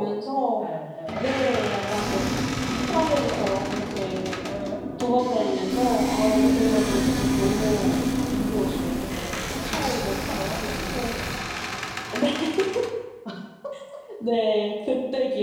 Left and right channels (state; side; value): identical; both; correlation 1.00